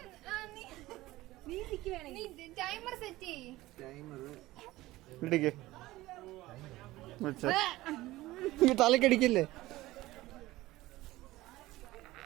ടൈമർ സെറ്റ് ചെയ്യ്. തലക്കടിക്കില്ലേ?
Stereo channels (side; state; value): left; quieter; 17.8 dB